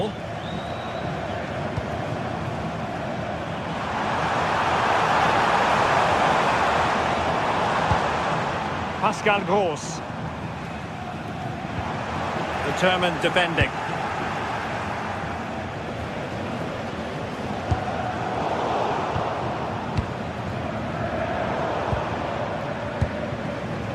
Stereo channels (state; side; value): identical; both; correlation 1.00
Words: Pascal Gross. Determined defending.